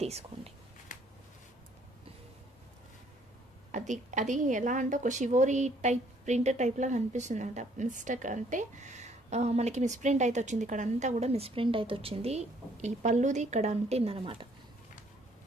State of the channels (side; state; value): both; normal; correlation 0.63